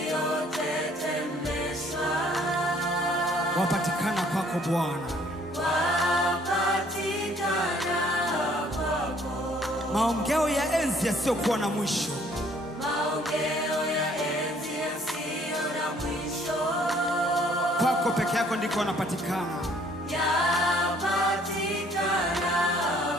Wapatikana kwako Bwana. Wapatikana kwako. Maongeo ya enzi yasiyokuwa na mwisho. Maongeo ya enzi yasiyo na mwisho. Kwako peke yako ndiko wanapatikana. Yapatikana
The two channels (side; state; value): both; normal; correlation 0.60